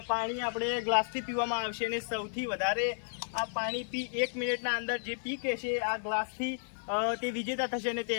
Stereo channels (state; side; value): silent; right; digital silence